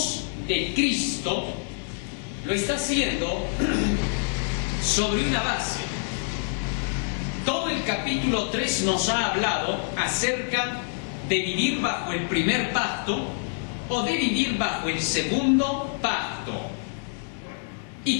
de Cristo, lo está haciendo sobre una base. Todo el capítulo 3 nos ha hablado acerca de vivir bajo el primer pacto o de vivir bajo el segundo pacto. Y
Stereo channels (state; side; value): silent; right; digital silence